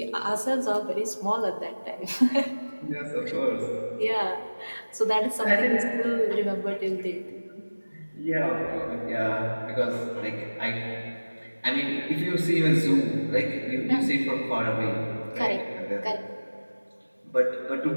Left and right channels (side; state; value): both; inverted; correlation -1.00